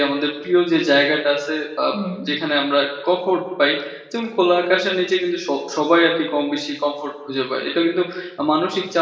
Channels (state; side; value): identical; both; correlation 1.00